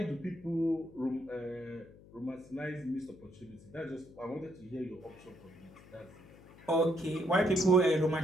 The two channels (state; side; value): noise; left; hum, 21 dB below the sound